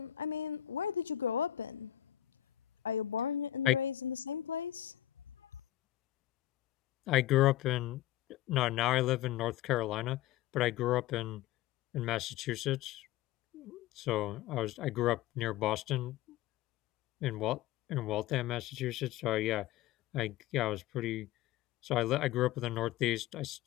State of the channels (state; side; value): quieter; right; 13.5 dB